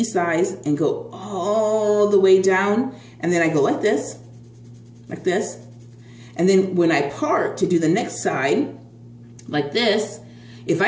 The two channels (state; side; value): identical; both; correlation 1.00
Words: size and go all the way down. And then I go like this. And then when I part to do the next side, like this, if